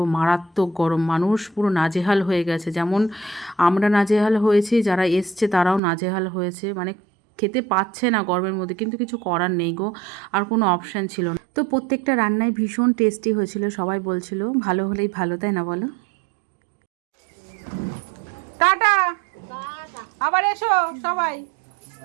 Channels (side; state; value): left; drops out; at 5.8 s